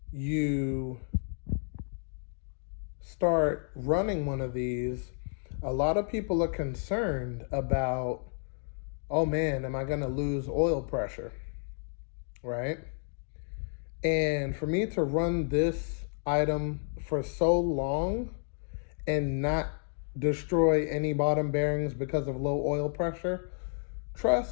you start running one of these, a lot of people are concerned about, oh man, am I going to lose oil pressure, right? And for me to run this item for so long and not destroy any bottom bearings because of low oil pressure,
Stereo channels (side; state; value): right; silent; 57 dB below the other